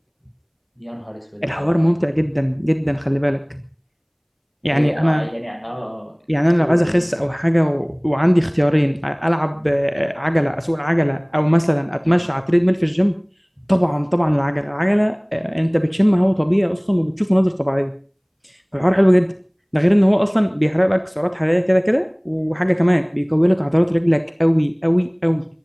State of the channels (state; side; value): identical; both; correlation 1.00